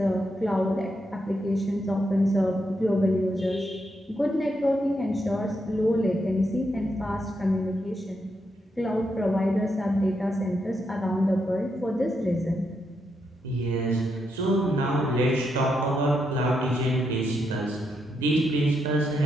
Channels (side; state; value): both; normal; correlation 0.81